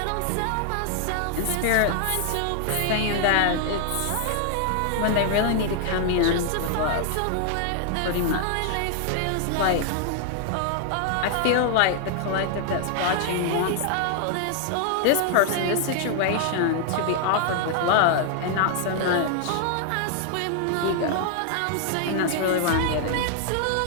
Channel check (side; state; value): both; different; correlation 0.00